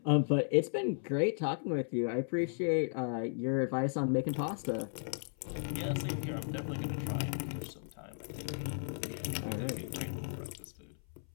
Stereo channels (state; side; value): silent; right; 54 dB below the other